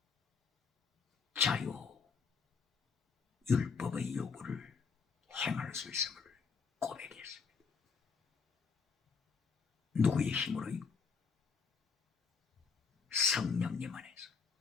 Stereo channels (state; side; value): quieter; right; 5.4 dB